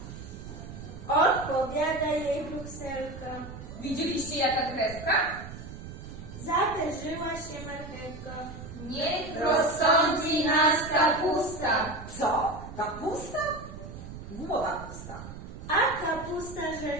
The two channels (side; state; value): right; noise; rumble, 12 dB below the sound